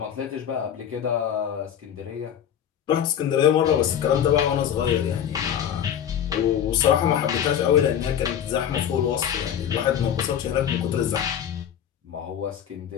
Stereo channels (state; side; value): quieter; right; 9.4 dB